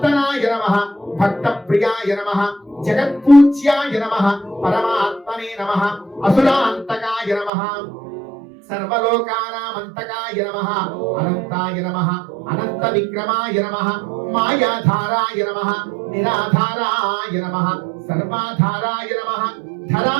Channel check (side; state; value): left; drops out; at 7.5 s